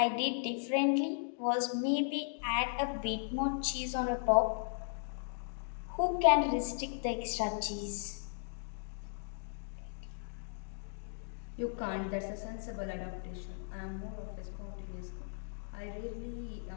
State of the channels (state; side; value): silent; right; digital silence